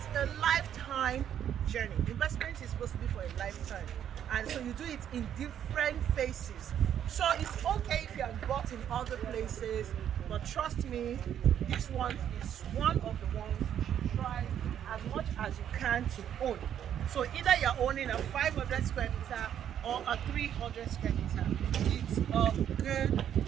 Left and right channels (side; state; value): left; quieter; 9.8 dB